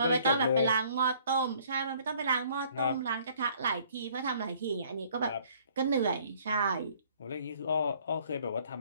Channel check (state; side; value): inverted; both; correlation -0.59